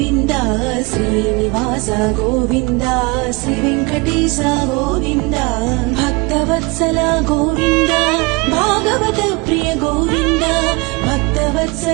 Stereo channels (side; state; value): left; quieter; 27.1 dB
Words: శ్రీనివాస గోవింద శ్రీ వెంకటేశ గోవింద భక్తవత్సల గోవింద భాగవత ప్రియ గోవింద